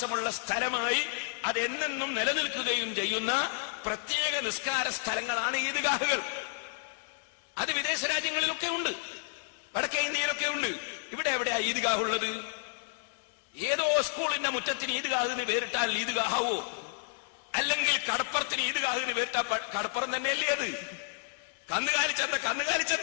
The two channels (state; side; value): silent; right; 57 dB below the other